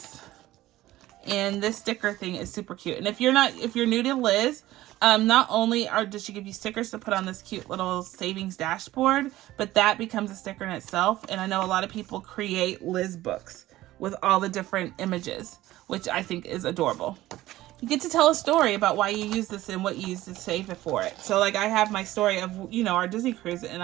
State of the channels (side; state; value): left; quieter; 16.0 dB